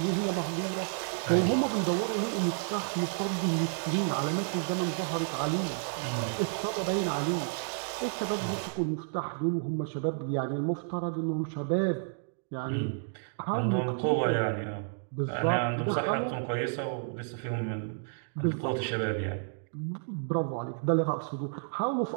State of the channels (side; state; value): left; silent; digital silence